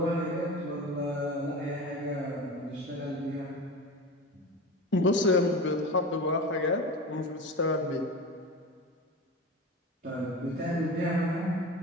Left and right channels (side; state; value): both; normal; correlation 0.30